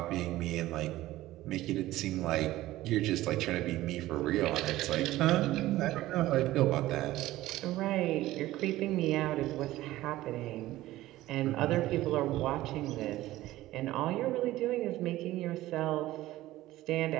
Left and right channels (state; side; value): quieter; left; 16.1 dB